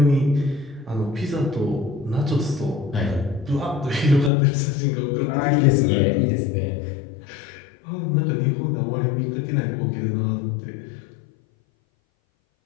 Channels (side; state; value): right; drops out; at 4.3 s